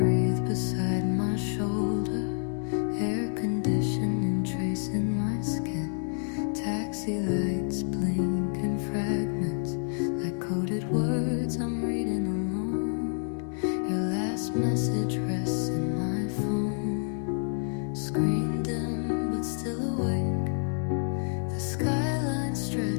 beside my shoulder, air conditioning tracing my skin. Taxi lights blink in fragments like coded words I'm reading alone. Your last message rests in my phone, screen dim but still awake. The skyline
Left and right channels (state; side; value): silent; right; 59 dB below the other